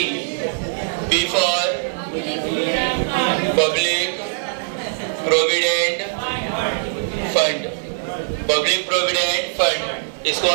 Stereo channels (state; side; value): silent; left; 63 dB below the other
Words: P for public provident fund. Public provident fund, इसको